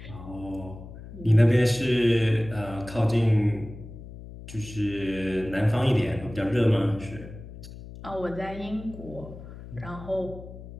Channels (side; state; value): left; noise; hum, 14 dB below the sound